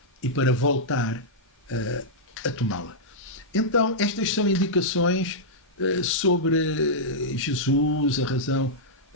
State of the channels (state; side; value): normal; both; correlation -0.09